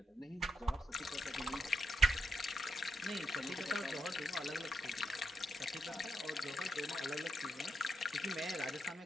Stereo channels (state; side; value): normal; both; correlation 0.80